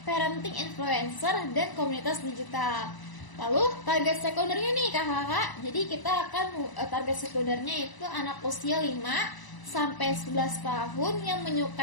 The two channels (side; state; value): right; late; 1.0 ms